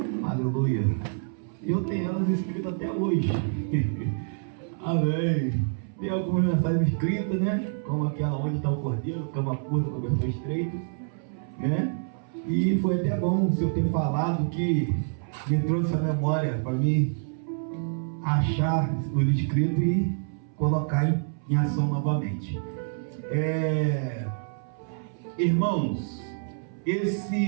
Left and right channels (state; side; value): silent; left; 60 dB below the other